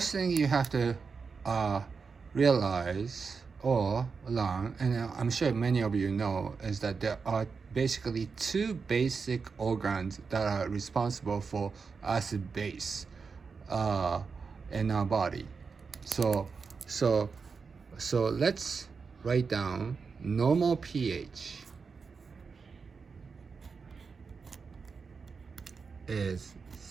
thing you have to realize or learn, and I'm sure many of you know, is that there are basically two basic organs that are responsible for acid base in our body. So, so, so let's write down normal pH is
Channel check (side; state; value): left; quieter; 5.2 dB